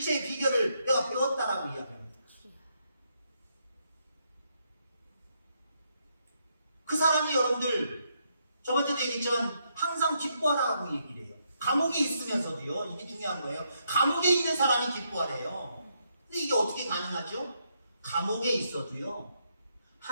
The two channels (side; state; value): both; inverted; correlation -0.77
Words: 비결을 내가 배웠다라고 이야기합니다. 그 사람이 여러분들 저번에도 얘기했지만 항상 기뻐하라고 얘기를 해요. 감옥에 있으면서도요. 이게 중요한 거예요. 감옥에 있는 사람이 기뻐하래요. 근데 이게 어떻게 가능하죠? 감옥에 있어도요.